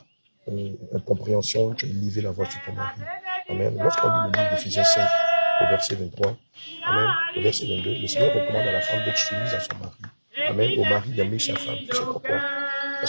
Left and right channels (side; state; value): both; inverted; correlation -1.00